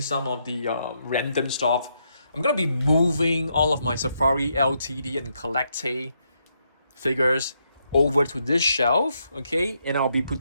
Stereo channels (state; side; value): inverted; both; correlation -0.78